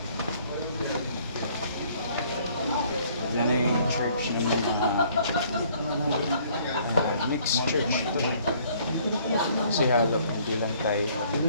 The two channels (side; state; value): both; inverted; correlation -0.60